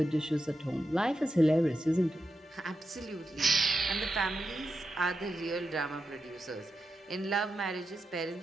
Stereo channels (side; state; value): both; normal; correlation 0.88